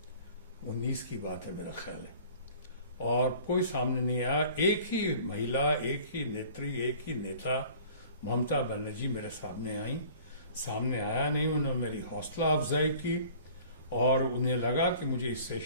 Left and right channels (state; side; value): inverted; both; correlation -0.48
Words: 19 की बात है मेरा ख्याल है, और कोई सामने नहीं आया। एक ही महिला, एक ही नेत्री, एक ही नेता ममता बनर्जी मेरे सामने आई। सामने आया नहीं, उन्होंने मेरी हौसला अफजाई की और उन्हें लगा कि मुझे इस